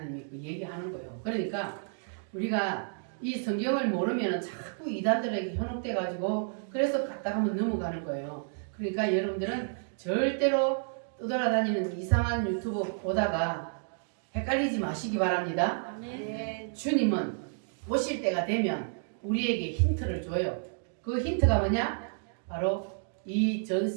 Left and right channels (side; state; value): left; silent; digital silence